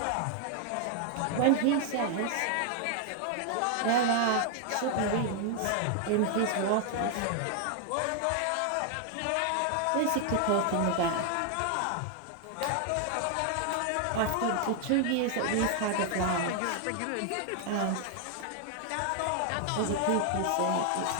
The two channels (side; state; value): both; different; correlation 0.00